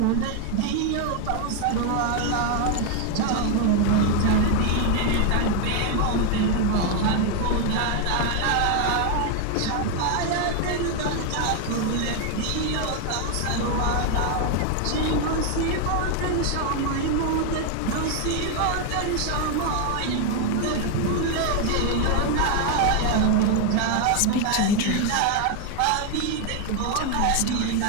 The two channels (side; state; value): both; different; correlation 0.01